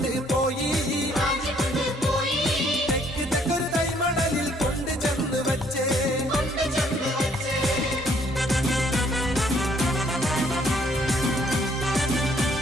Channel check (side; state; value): both; normal; correlation 0.64